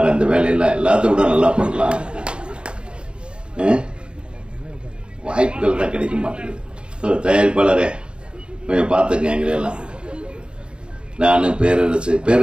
அந்த வேலையெல்லாம் எல்லாத்த விட நல்லா பண்ணலாம். வாய்ப்புகள் தான் கிடைக்க மாட்டேங்குது. தயாரிப்பாளரே கொஞ்சம் பாத்துங்க எங்களெல்லாம். நானு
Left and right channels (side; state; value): left; late; 0.053 ms